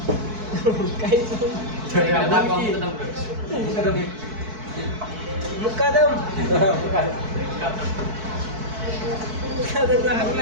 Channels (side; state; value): left; late; 4.6 ms